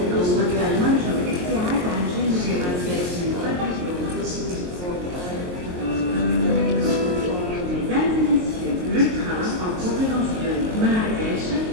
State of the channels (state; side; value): late; left; 22 ms